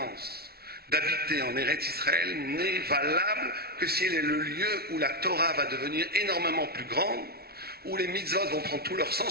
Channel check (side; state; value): left; late; 0.45 ms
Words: d'habiter en Eretz Israël n'est valable que si elle est le lieu où la Torah va devenir énormément plus grande, où les mitzvot vont prendre tout leur